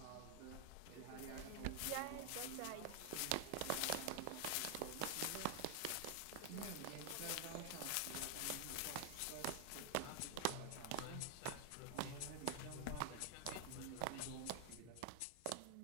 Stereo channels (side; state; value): both; different; correlation 0.00